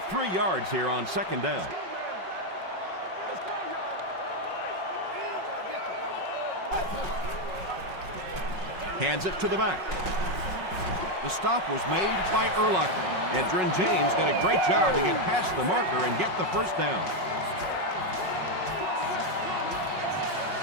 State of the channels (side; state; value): left; late; 5.4 ms